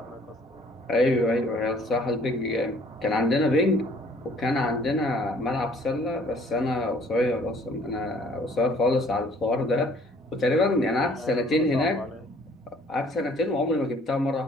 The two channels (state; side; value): normal; both; correlation 0.58